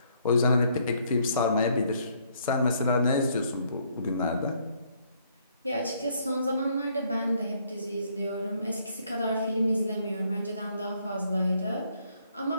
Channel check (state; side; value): inverted; both; correlation -0.68